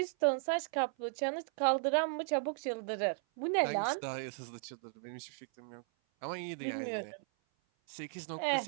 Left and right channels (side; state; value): left; silent; 54 dB below the other